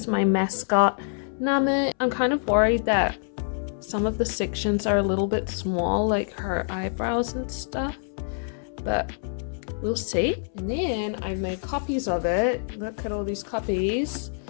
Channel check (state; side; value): silent; right; 61 dB below the other